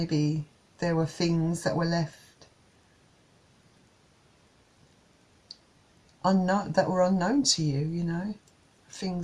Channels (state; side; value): identical; both; correlation 1.00